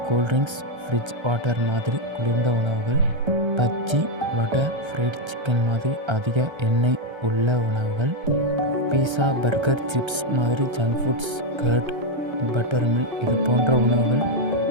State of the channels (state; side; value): late; left; 1.3 ms